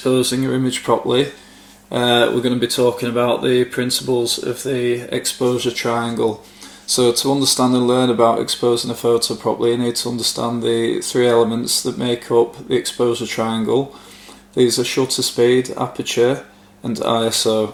your image properly. We're going to be talking about the principles of the exposure triangle. So to understand and learn about exposing a photo properly, you need to understand the three elements that make up the exposure triangle. These are shutter speed, aperture and ISO.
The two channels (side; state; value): both; identical; correlation 1.00